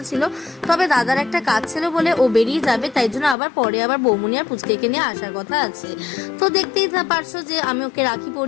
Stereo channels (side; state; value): right; drops out; at 3.4 s